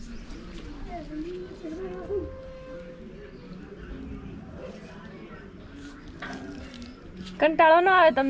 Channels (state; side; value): identical; both; correlation 1.00